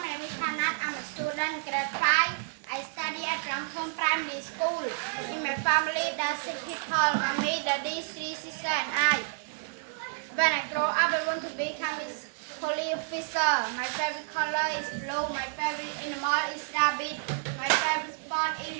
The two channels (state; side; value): silent; left; digital silence